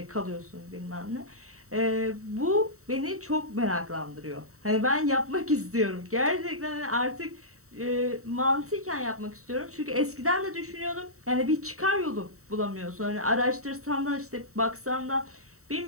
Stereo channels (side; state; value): left; late; 0.64 ms